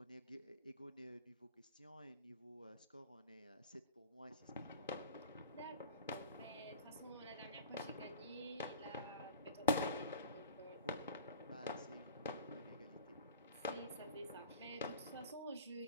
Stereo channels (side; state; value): both; inverted; correlation -0.37